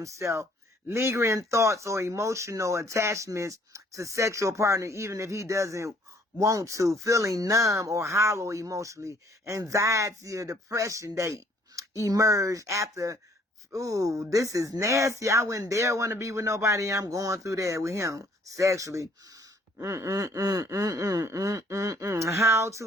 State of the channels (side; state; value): both; normal; correlation 0.61